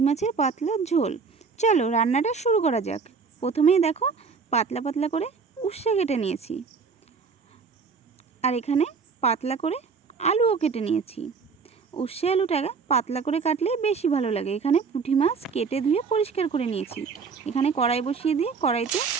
মাছের পাতলা ঝোল। চলো রান্নাটা শুরু করা যাক। প্রথমেই দেখো পাতলা পাতলা করে উচ্ছে কেটে নিয়েছি, আর এখানে পাতলা করে আলুও কেটে নিয়েছি। উচ্ছে আলুটা পাতলা করে কাটলেই বেশি ভালো লাগে। এখানে পুঁটি মাছ কেটে ধুয়ে পরিষ্কার করে নিয়েছি। এখানে কড়াই বসিয়ে দিয়ে কড়াইতে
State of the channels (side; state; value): left; quieter; 5.3 dB